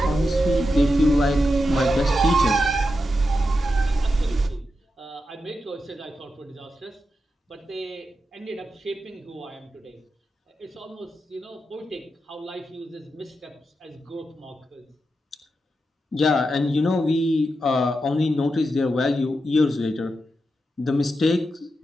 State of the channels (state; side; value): normal; both; correlation 0.87